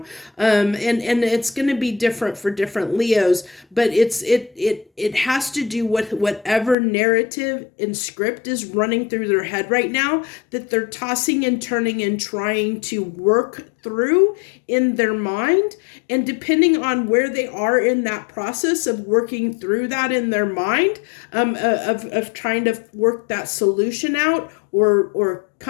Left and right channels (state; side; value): drops out; right; at 6.8 s